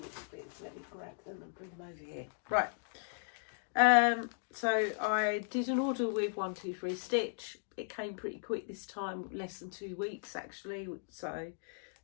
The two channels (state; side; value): silent; right; digital silence